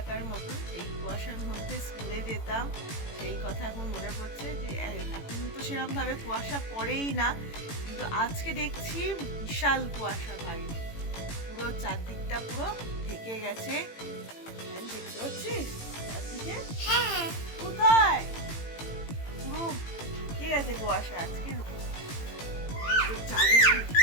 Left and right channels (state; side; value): late; right; 18 ms